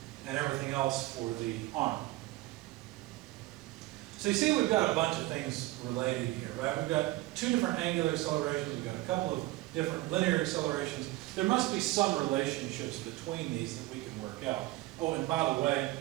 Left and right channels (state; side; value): quieter; left; 18.4 dB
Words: and everything else for the arm. So you see we've got a bunch of things related here, right? We've got 2 different angular accelerations, we've got a couple of different linear accelerations, there must be some relationships between these that we can work out. Oh, and by the way,